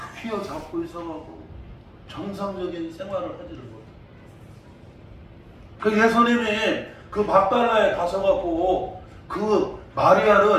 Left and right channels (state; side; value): identical; both; correlation 1.00